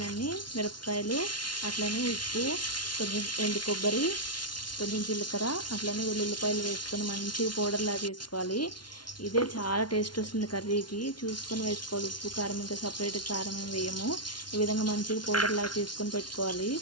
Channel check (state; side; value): late; right; 0.70 ms